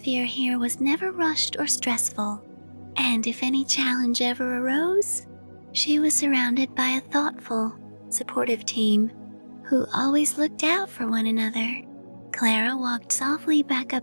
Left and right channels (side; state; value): both; inverted; correlation -1.00